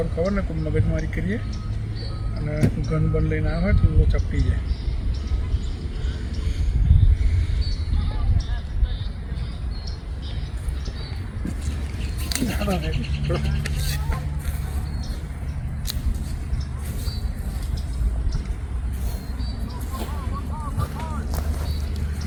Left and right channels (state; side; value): identical; both; correlation 1.00